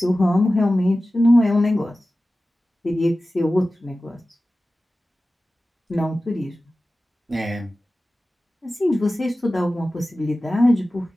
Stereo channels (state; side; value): normal; both; correlation 0.95